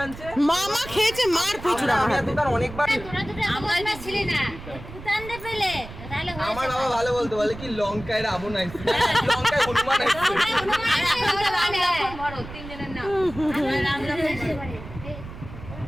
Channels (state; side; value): noise; right; rumble, 13 dB below the sound